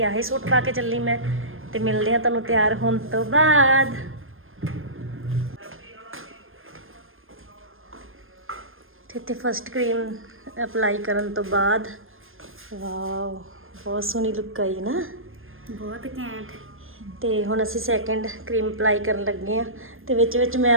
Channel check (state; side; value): late; left; 0.60 ms